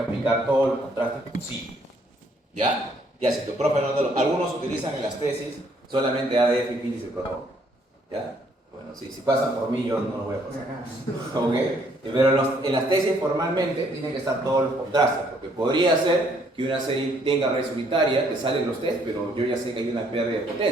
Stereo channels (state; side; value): normal; both; correlation 0.66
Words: aplicar todos los contrastes posibles. ¿Ya? Ya, si tu profe no te lo... Algunos utilizan en las tesis solamente ADF y Viris y Perron. ¿Ya? Bueno, si pasan por mí, yo no lo voy a pasar. ¿Ok? Pero en las tesis formalmente tienen que estar todos los contrastes, porque podría ser que una serie tenga red unitaria, te salen los test, pero yo ya sé que hay una pérdida de